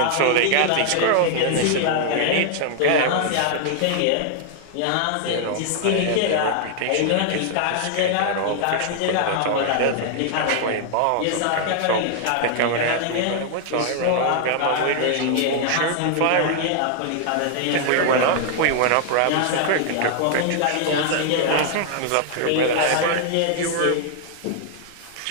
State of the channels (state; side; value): different; both; correlation 0.00